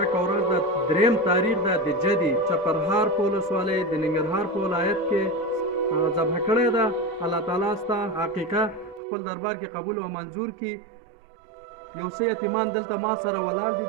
ورځ د 3 تاریخ ده د جدي چپرهار په ولسوالۍ د ننګرهار په ولایت کې ذبح کړې ده. الله تعالی ستا حقیقه خپل دربار کې قبول او منظور کړي. یو څه یتیمان دلته ما سره ولاړ دي،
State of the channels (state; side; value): drops out; left; at 9.0 s